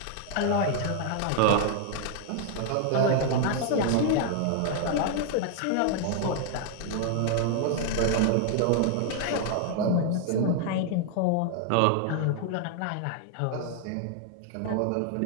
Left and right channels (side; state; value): both; different; correlation 0.00